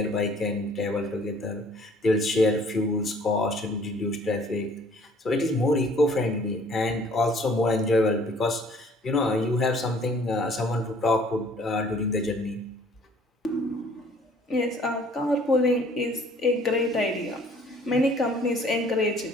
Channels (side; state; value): both; normal; correlation 0.56